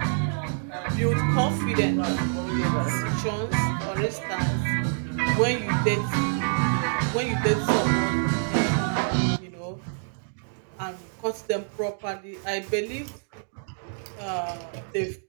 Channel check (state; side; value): silent; left; digital silence